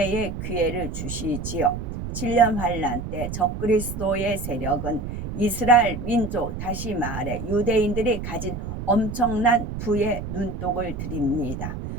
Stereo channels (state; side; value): noise; right; rumble, 6 dB below the sound